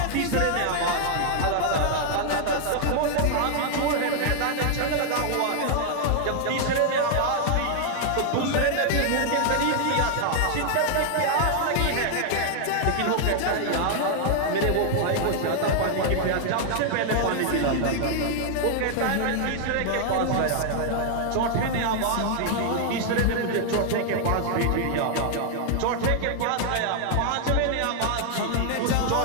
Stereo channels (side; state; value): both; different; correlation 0.00